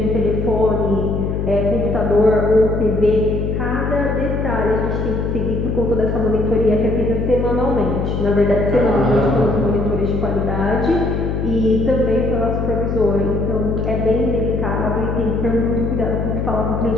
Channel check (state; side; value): noise; left; hum, 1 dB below the sound